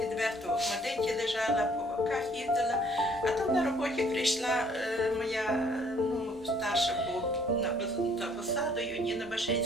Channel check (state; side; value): normal; both; correlation 0.61